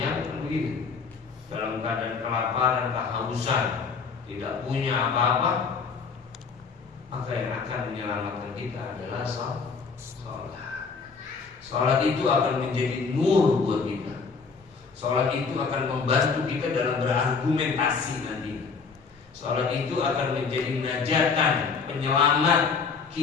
begitu, dalam keadaan kelaparan, kehausan, tidak punya apa-apa, maka yang akan menyelamatkan kita adalah sholat. Sholat itu akan menjadi nur buat kita. Sholat itu akan membantu kita dalam berargumentasi nanti. Sholat itu akan menjadi najatan, penyelamat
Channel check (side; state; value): right; quieter; 5.2 dB